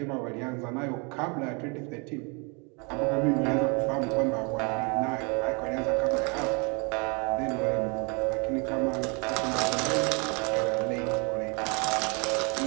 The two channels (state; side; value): quieter; left; 32.5 dB